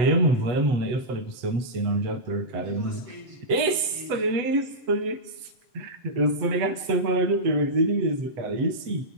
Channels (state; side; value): late; left; 8.1 ms